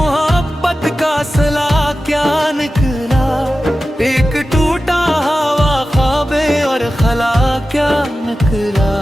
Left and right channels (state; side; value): normal; both; correlation 0.94